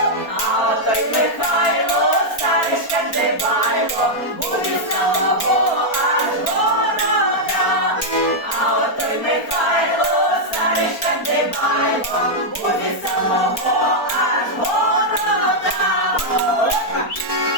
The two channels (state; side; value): late; right; 4.3 ms